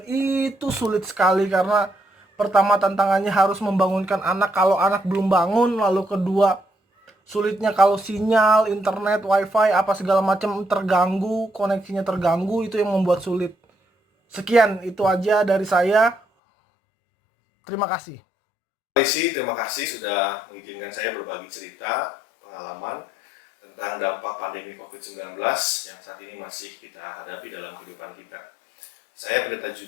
itu sulit sekali, karena pertama tantangannya harus membangunkan anak kalau anak belum bangun, lalu kedua sulitnya kalau sinyal, internet, wifi, apa segala macam terganggu, koneksinya terganggu, itu yang membuat sulit. Sekian, itu aja dari saya. Terima kasih. Terima kasih sudah mengizinkan saya berbagi cerita, pengalaman tentang dampak pandemi COVID-19 yang saat ini masih kita hadapi dalam kehidupan kita. Saya Pendeta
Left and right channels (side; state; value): right; drops out; at 16.2 s